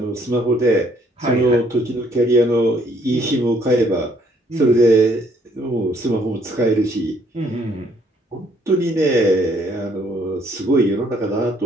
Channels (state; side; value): normal; both; correlation 0.65